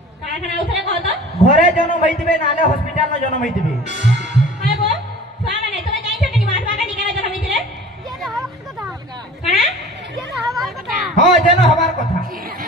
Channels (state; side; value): normal; both; correlation 0.43